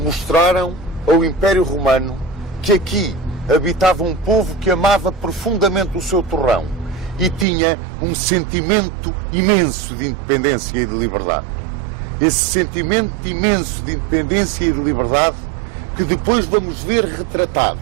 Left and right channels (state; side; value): drops out; left; at 7.5 s